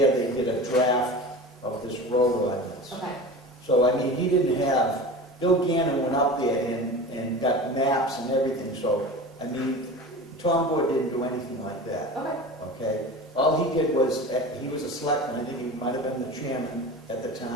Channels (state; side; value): normal; both; correlation 0.33